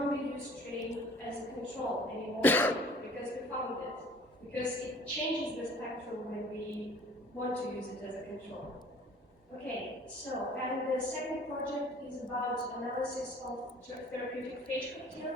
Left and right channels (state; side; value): normal; both; correlation 0.50